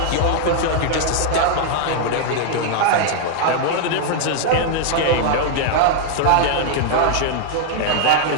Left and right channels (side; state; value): both; different; correlation 0.00